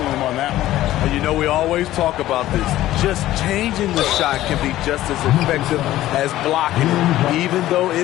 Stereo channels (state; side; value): quieter; right; 14.6 dB